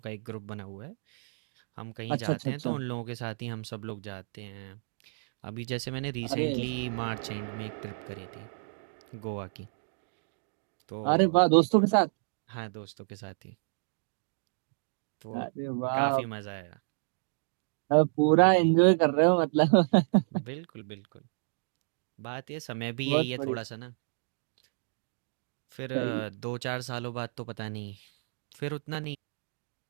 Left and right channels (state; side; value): silent; left; digital silence